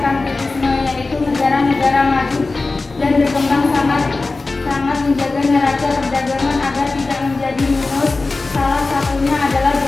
yaitu negara-negara maju dan berkembang sangat menjaga neraca perdagangan agar tidak menjadi minus. Salah satunya adalah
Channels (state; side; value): quieter; right; 3.6 dB